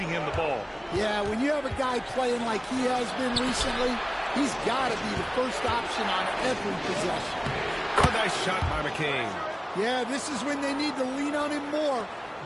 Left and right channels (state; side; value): identical; both; correlation 1.00